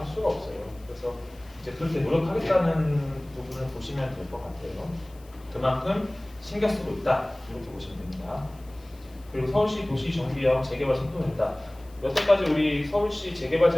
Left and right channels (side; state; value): left; noise; hiss, 27 dB below the sound